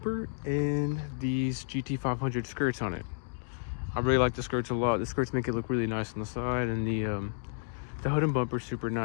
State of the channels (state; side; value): silent; right; digital silence